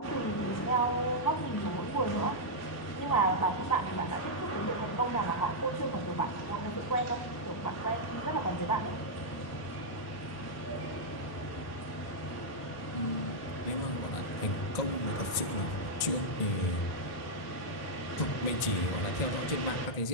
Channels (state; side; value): late; right; 1.8 ms